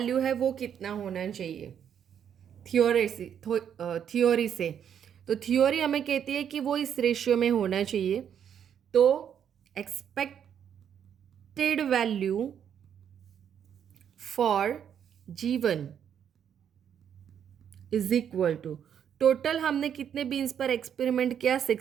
है वो कितना होना चाहिए थियोरी से, तो थियोरी हमें कहती है कि वो इस रेशियो में होना चाहिए। तो expected value for G1 is equal to total हमने कितने बीन्स पर एक्सपेरिमेंट किया?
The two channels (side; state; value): left; quieter; 8.7 dB